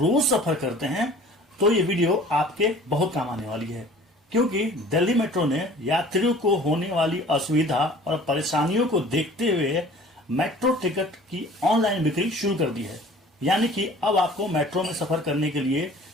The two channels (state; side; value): normal; both; correlation 0.48